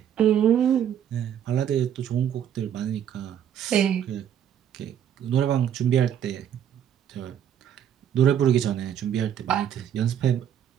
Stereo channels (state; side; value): quieter; left; 9.5 dB